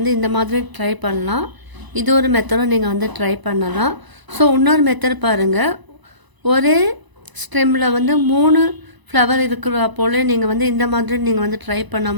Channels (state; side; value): late; left; 1.0 ms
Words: இந்த மாதிரி ட்ரை பண்ணலாம். இது ஒரு மெத்தடும் நீங்கள் வந்து ட்ரை பண்ணலாம். ஸோ இன்னொரு மெத்தட் பாருங்கள், ஒரே ஸ்டெம்மில் வந்து 3 ஃப்ளவர் இருக்கிற போல் நீங்கள் வந்து இந்த மாதிரி நீங்கள் வந்து ட்ரை